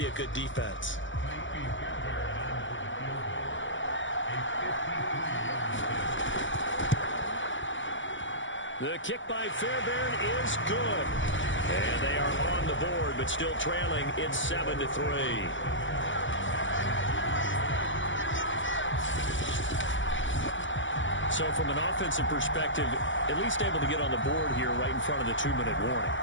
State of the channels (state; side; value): late; right; 0.56 ms